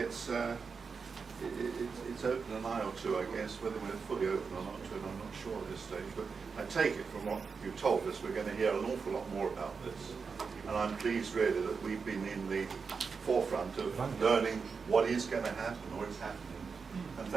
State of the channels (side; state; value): left; quieter; 5.3 dB